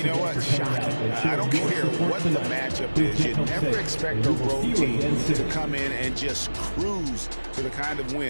know what? Shocking. I don't care what the matchup is. You never expect a road team to come in and just cruise to the kind of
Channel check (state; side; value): inverted; both; correlation -1.00